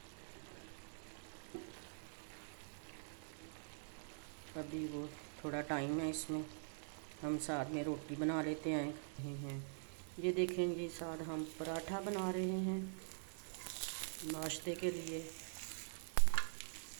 अभी वो थोड़ा टाइम है इसमें, हम साथ में रोटी बना लेते हैं। ये देखें जी, साथ हम पराठा बना रहे हैं नाश्ते के लिए।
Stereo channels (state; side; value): silent; left; digital silence